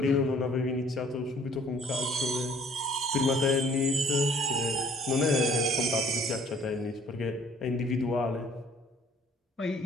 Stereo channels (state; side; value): normal; both; correlation 0.57